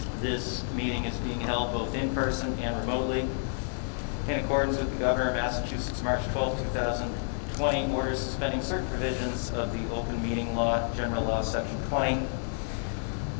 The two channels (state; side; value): silent; right; digital silence